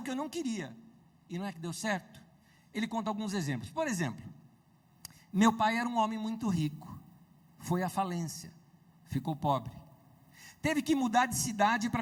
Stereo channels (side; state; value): both; identical; correlation 1.00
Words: que eu não queria. E não é que deu certo? Ele conta alguns exemplos. Por exemplo, meu pai era um homem muito rico. Foi à falência. Ficou pobre. Teve que mudar de cidade